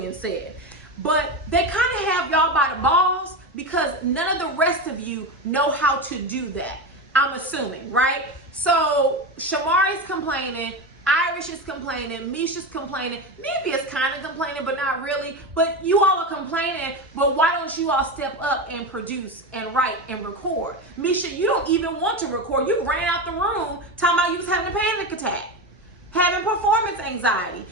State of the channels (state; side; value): normal; both; correlation 0.19